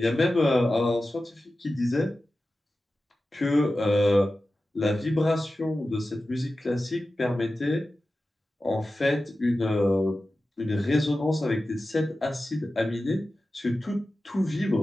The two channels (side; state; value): both; normal; correlation 0.94